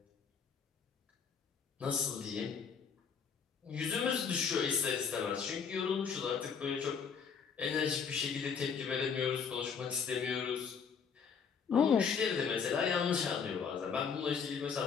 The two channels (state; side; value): quieter; right; 6.4 dB